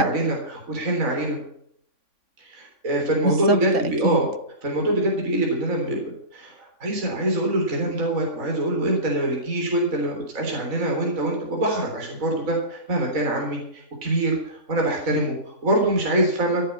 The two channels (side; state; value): left; late; 3.5 ms